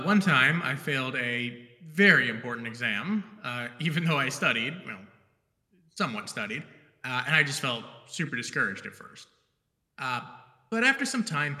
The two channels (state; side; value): identical; both; correlation 1.00